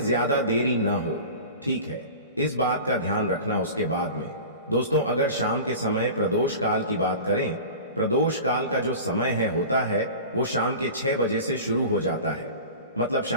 देरी न हो, ठीक है? इस बात का ध्यान रखना। उसके बाद में दोस्तों, अगर शाम के समय प्रदोष काल की बात करें, प्रदोष काल का जो समय होता है वो शाम के 6 बजे से शुरू हो जाता है। मतलब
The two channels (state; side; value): inverted; both; correlation -0.36